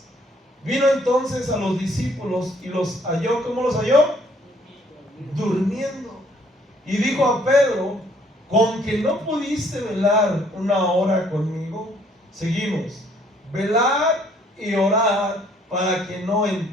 Vino entonces a los discípulos y los halló. ¿Cómo los halló? Durmiendo. Y dijo a Pedro: ¿con que no pudiste velar una hora conmigo? Seguimos. Velad y orad para que no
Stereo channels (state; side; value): normal; both; correlation 0.63